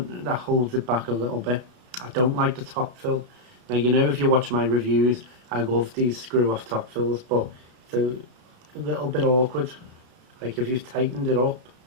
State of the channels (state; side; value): late; left; 33 ms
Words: holds it back a little bit. I don't like the top fill. Now, if you watch my reviews, I love these screw off top fills, but it's a little bit awkward. Like if you've tightened it up,